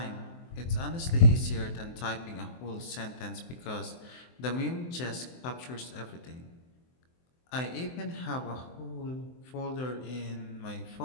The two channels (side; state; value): right; late; 23 ms